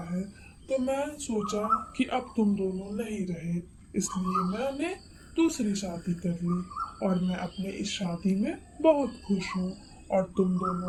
है। तो मैं सोचा कि अब तुम दोनों नहीं रहे, इसलिए मैंने दूसरी शादी कर ली और मैं अपने इस शादी में बहुत खुश हूँ और तुम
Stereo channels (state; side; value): identical; both; correlation 1.00